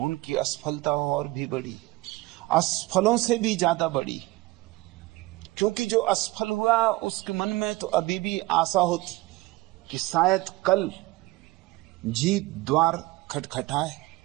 असफलता और भी बड़ी, असफलों से भी ज्यादा बड़ी। क्योंकि जो असफल हुआ उसके मन में तो अभी भी आशा होती कि शायद कल जीत द्वार खटखटाए।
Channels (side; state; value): left; quieter; 20.1 dB